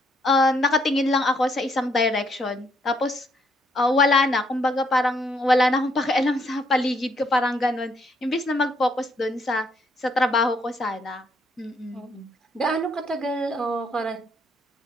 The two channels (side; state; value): both; normal; correlation 0.71